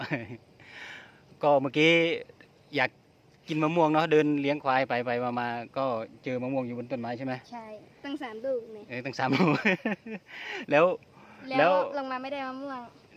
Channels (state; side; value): identical; both; correlation 1.00